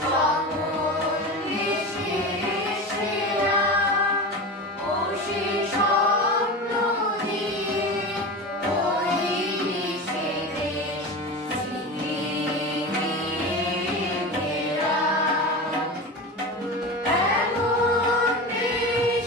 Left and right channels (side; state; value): both; normal; correlation 0.27